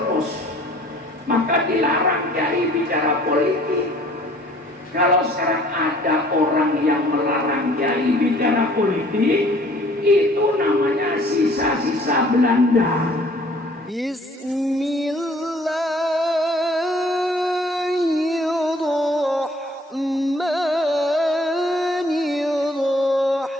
Maka dilarang kiai bicara politik. Kalau sekarang ada orang yang melarang kiai bicara politik, itu namanya sisa-sisa Belanda.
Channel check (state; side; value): normal; both; correlation 0.55